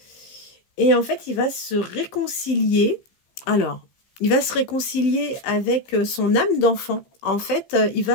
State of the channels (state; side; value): late; right; 15 ms